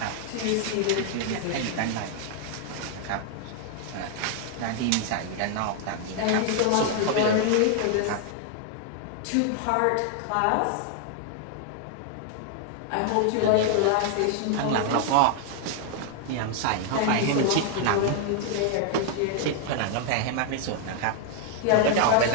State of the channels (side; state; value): both; different; correlation 0.00